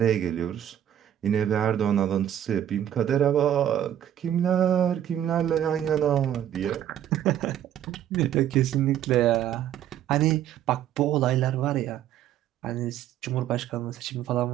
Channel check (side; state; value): left; quieter; 10.8 dB